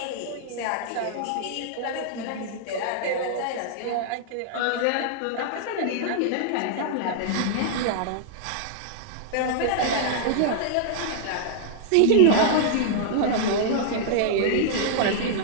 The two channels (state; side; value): different; both; correlation -0.01